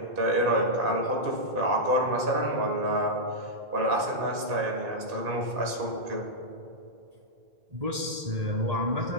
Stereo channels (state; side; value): late; left; 1.8 ms